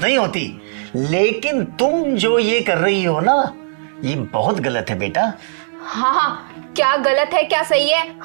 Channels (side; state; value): left; silent; digital silence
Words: नहीं होती, लेकिन तुम जो ये कर रही हो ना, ये बहुत गलत है बेटा। हाँ हाँ, क्या गलत है क्या सही है,